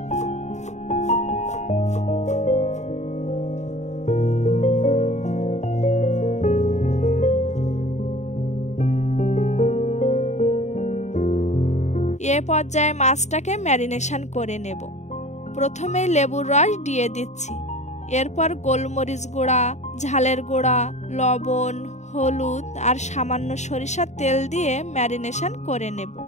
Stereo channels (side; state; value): right; late; 0.34 ms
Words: এ পর্যায়ে মাছটাকে ম্যারিনেশন করে নেব। প্রথমে লেবুর রস দিয়ে দিচ্ছি, এরপর গোলমরিচ গুঁড়া, ঝালের গুঁড়া, লবণ, হলুদ আর সামান্য সরিষার তেল দিয়ে ম্যারিনেশন করে নেব।